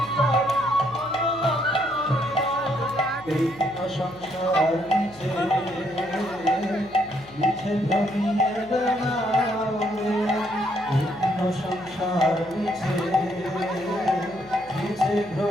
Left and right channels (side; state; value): left; noise; hum, 23 dB below the sound